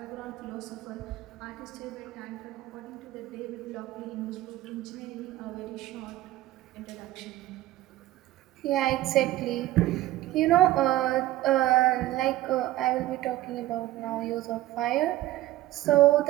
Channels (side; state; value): left; quieter; 15.6 dB